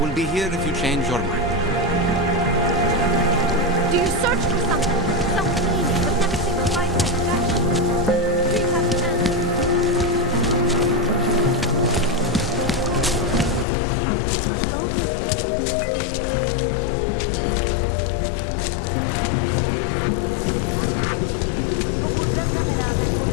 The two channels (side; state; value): right; drops out; at 13.7 s